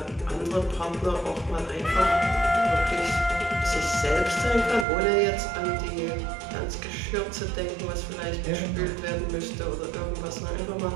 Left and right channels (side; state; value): left; drops out; at 4.9 s